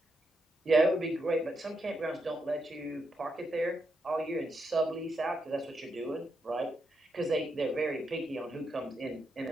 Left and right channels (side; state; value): both; normal; correlation 0.82